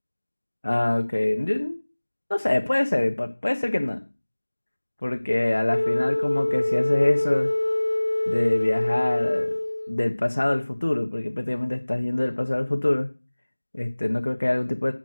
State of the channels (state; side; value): inverted; both; correlation -1.00